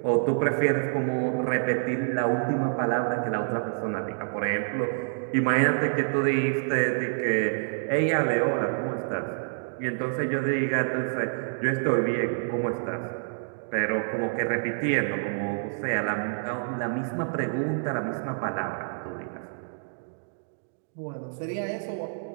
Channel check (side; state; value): left; silent; digital silence